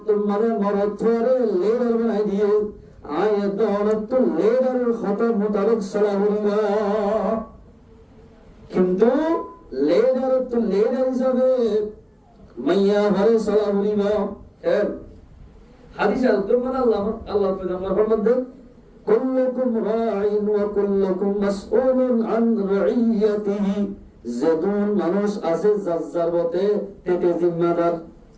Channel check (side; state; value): both; identical; correlation 1.00